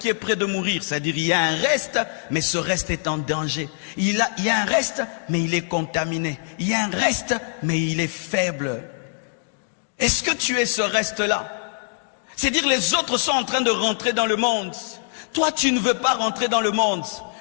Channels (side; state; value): right; silent; digital silence